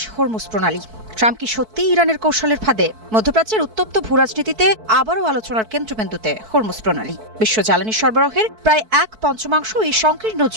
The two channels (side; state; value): left; late; 4.6 ms